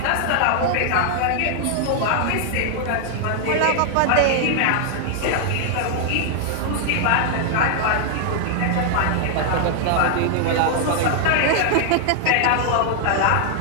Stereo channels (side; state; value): both; different; correlation 0.00